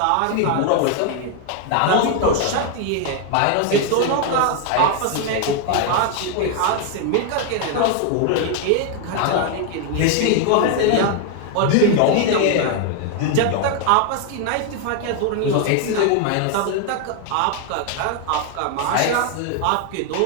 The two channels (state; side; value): different; both; correlation 0.01